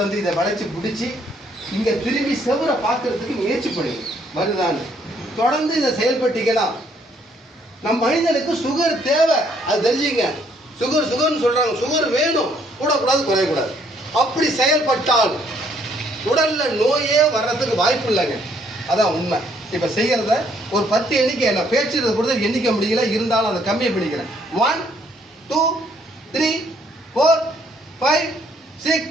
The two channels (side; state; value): both; normal; correlation 0.67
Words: வந்து இதை வளைச்சி பிடிச்சி இங்கே திரும்பி செவரை பார்க்கறதுக்கு முயற்சி பண்ணுங்க. வருதான்னு தொடர்ந்து இதை செயல்பட்டீங்கன்னா நம்ம மனிதனுக்கு சுகர் தேவை, அது தெரிஞ்சுங்க. சுகர்னு சொல்கிறாங்க, சுகர் வேணும், கூடக்கூடாது குறையக்கூடாது. அப்படி செயல்பட்டால் உடலில் நோயே வர்றதுக்கு வாய்ப்பு இல்லைங்க. அதான் உண்மை. இப்போ செய்கிறத ஒரு 10 எண்ணிக்கை நான் பேச்சுறதை பொறுத்த எண்ணிக்க முடியல, இருந்தாலும் அதை கம்மியாக பண்ணிக்கிறேன். 1 2 3 4 5 6